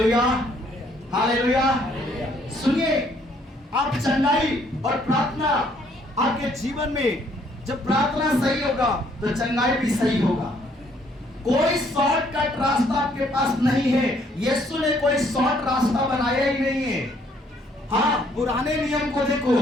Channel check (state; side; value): normal; both; correlation 0.65